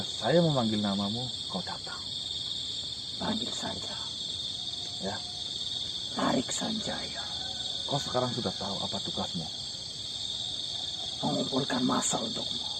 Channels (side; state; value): both; identical; correlation 1.00